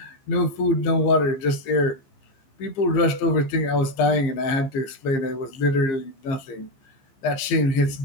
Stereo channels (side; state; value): right; late; 15 ms